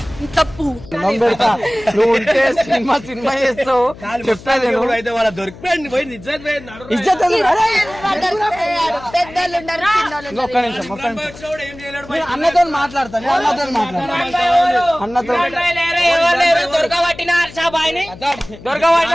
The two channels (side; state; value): left; noise; hum, 18 dB below the sound